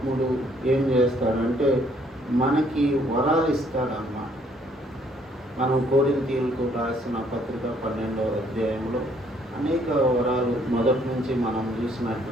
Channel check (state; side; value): normal; both; correlation 0.65